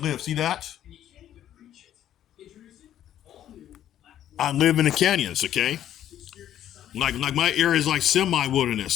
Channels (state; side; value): quieter; right; 11.4 dB